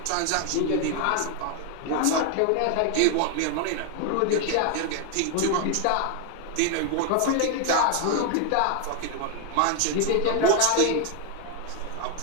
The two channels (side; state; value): both; different; correlation 0.01